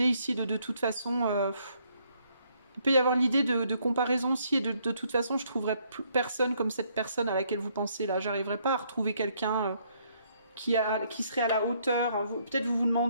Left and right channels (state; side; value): inverted; both; correlation -0.69